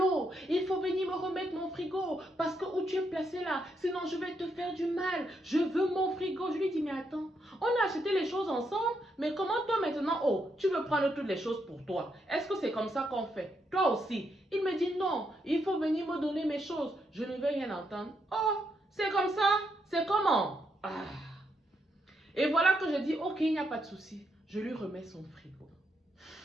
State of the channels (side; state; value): both; normal; correlation 0.78